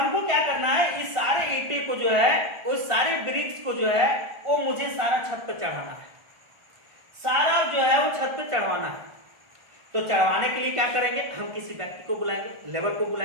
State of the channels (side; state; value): left; late; 1.4 ms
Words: क्या करना है, इस सारे ईंटे को जो है, उस सारे ब्रिक्स को जो है वो मुझे सारा छत पर चढ़ाना है, सारा जो है वो छत पर चढ़वाना है। तो चढ़वाने के लिए क्या करेंगे, हम किसी व्यक्ति को बुलाएंगे, लेबर को